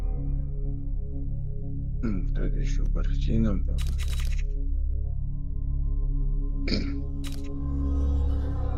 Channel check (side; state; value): both; identical; correlation 1.00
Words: Тут еще картина.